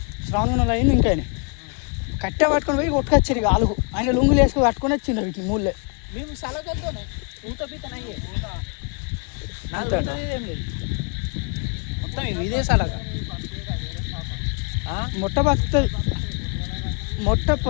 శ్రావణం అయింది. ఇంకా కట్టె పట్టుకొని పోయి కొట్టుకొచ్చారు ఇక ఆలుగు. ఆయన లుంగులు వేసుకొని కట్టుకొని వచ్చిండు వీటిని మూలే. మేము సలగలతోనే ఊత పీతనయ్యే అంతే మొత్తం ఇదే సలగ మొట్ట బతుకుతుంది, మొట్ట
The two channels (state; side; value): quieter; right; 35.8 dB